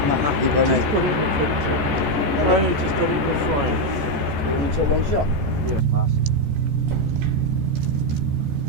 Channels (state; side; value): late; left; 14 ms